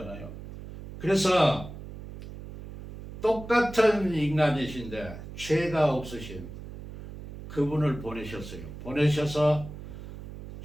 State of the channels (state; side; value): noise; right; hum, 12 dB below the sound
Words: 그래서 똑같은 인간이신데 죄가 없으신 그분을 보내셨어요. 보내셔서